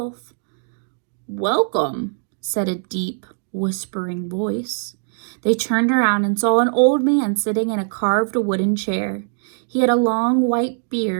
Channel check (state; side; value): silent; left; digital silence